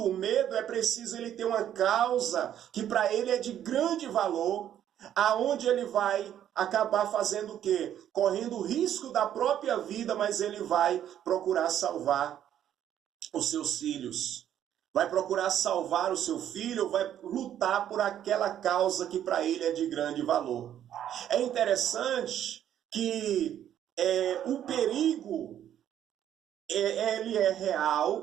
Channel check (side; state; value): left; quieter; 10.6 dB